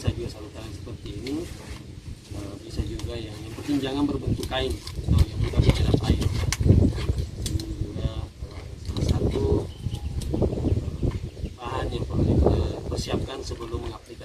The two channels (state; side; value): identical; both; correlation 1.00